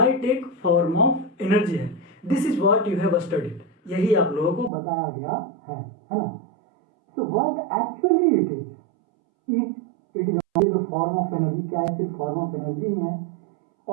एक फॉर्म ऑफ एनर्जी है। This is what you have studied, यही आप लोगों को बताया गया है ना। So what actually it is, it is only the form of energy. क्या है? सिर्फ फॉर्म ऑफ एनर्जी ही है,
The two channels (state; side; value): drops out; left; at 4.7 s